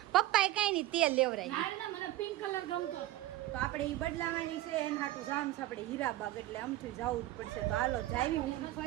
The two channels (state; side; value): quieter; left; 15.7 dB